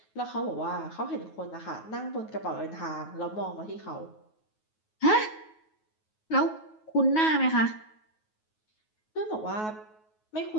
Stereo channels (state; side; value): late; right; 9.4 ms